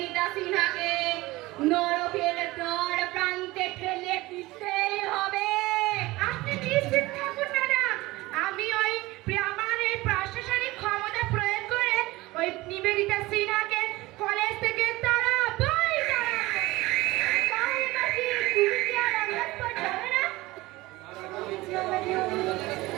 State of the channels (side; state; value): left; quieter; 19.9 dB